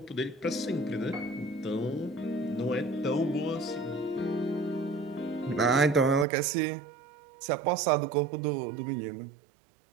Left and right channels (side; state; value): left; drops out; at 6.2 s